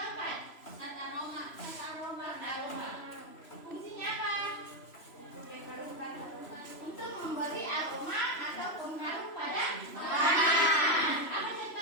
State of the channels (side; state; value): right; late; 3.0 ms